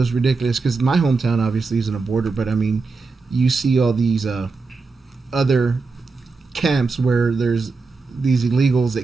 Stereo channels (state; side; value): quieter; left; 4.2 dB